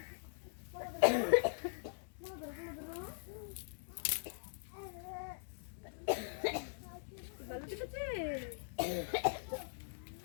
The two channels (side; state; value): right; silent; digital silence